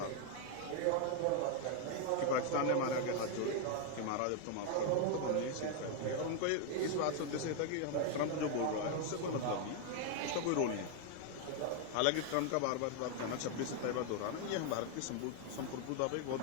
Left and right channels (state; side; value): different; both; correlation 0.01